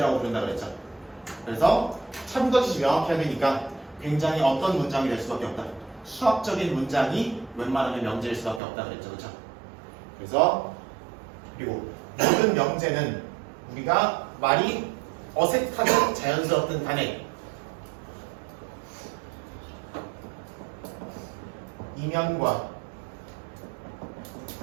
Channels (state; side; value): drops out; left; at 8.6 s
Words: 부른다 그랬죠. 그래서 참고지시 명확해야 되니까 굉장히 어떤 문장이 될 수밖에 없다. 수학적인 문장이 웬만하면 명제일 수밖에 없다 그랬죠. 그렇죠? 그래서 그리고 모든 명제는 우리가 말이 어색하든 자연스럽든 간에 이면과